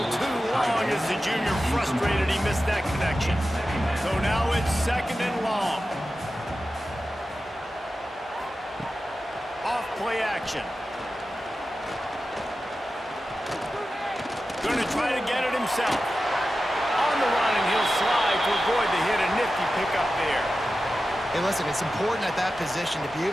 too long as the junior frustrated he missed that connection. So now it's 2nd and long. Off play action. Going to try to get it himself. On the run, and he'll slide to avoid the hit. A nifty pickup there. Hey, listen, it's important at that position to be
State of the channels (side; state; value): both; normal; correlation 0.93